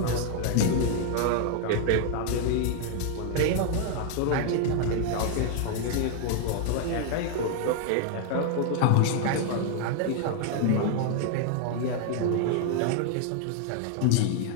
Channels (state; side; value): different; both; correlation 0.00